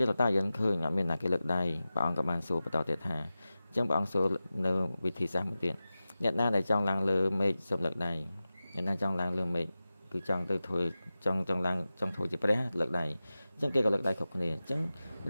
នតាយើងឃើញអត់មានអ្នកគេលើកដៃព្រះអង្គក៏បានសួរបន្តទៀតថាអញ្ចឹងព្រះអង្គសួរនៅវិធីសាស្ត្រមួយទៀតអ្នកណាដែលចង់ឡើងលើមេឃសំលឹកដៃអ្នកណាចង់ឡើងលើមេឃ គឺចង់ទៅធ្វើចង់ធ្វើជាព្រះលើកដៃអញ្ចឹងគេក៏លើកដៃគ្រប់គ្នាអញ្ចឹង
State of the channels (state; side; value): inverted; both; correlation -0.95